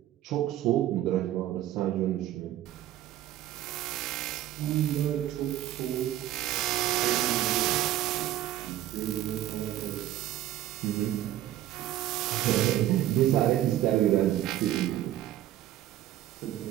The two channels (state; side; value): quieter; left; 13.3 dB